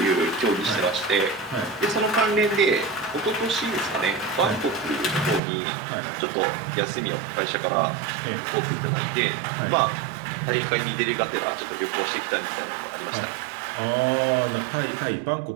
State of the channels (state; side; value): drops out; left; at 5.4 s